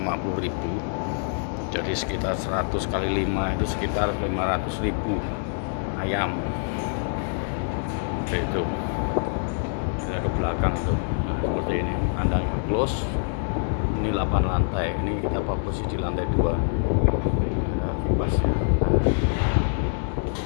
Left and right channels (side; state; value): right; silent; 61 dB below the other